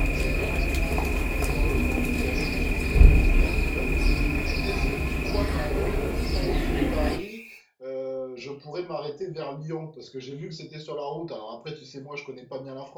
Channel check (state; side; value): identical; both; correlation 1.00